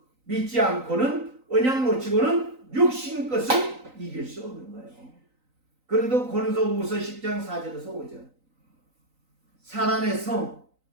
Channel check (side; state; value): left; late; 3.9 ms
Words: 믿지 않고는 언약 놓치고는 육신 것을 이길 수 없는 거예요. 그래도 고린도후서 10장 4절에서 5절 사단의 성,